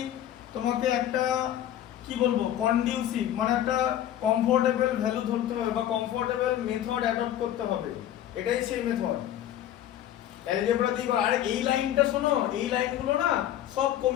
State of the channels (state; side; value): quieter; right; 11.7 dB